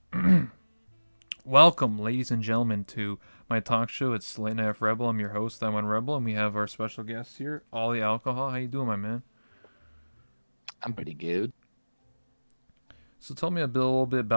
Welcome, ladies and gentlemen, to my talk show. It's Late Night Rebel. I'm your host, I'm on Rebel, and we have our special guest here, Ollie Alcohol. How you doing, my man? I'm pretty good. So tell me a little bit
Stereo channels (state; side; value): inverted; both; correlation -1.00